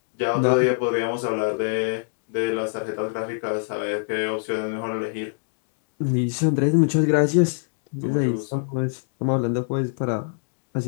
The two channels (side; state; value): right; silent; digital silence